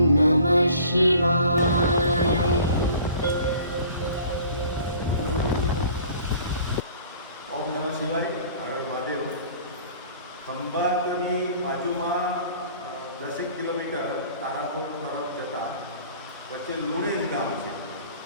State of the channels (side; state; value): both; inverted; correlation -0.49